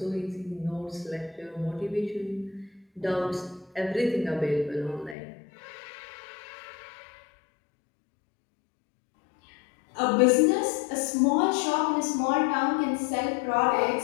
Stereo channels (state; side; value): drops out; right; at 5.2 s